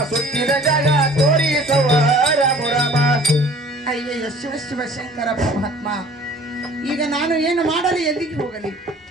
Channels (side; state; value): both; normal; correlation 0.49